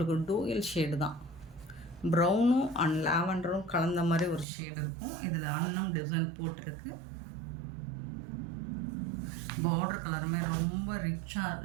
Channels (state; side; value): drops out; left; at 4.5 s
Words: டூயல் ஷேடு தான். ப்ரௌனும் அண்ட் லாவெண்டரும் கலந்த மாதிரி ஒரு ஷேடு இருக்கும். இதில் அன்னம் டிசைன் போட்டிருக்கு. பார்டர் கலருமே ரொம்ப ரிச்சாக